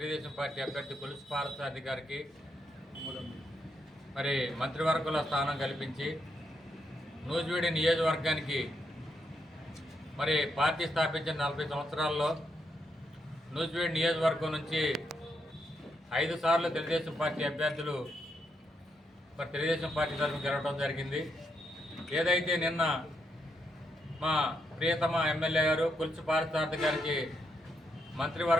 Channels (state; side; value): normal; both; correlation 0.79